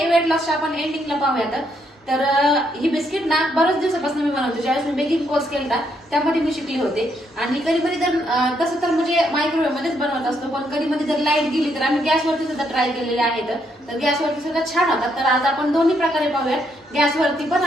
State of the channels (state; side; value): normal; both; correlation 0.75